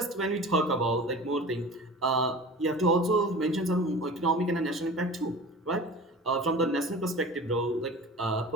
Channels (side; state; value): both; normal; correlation 0.38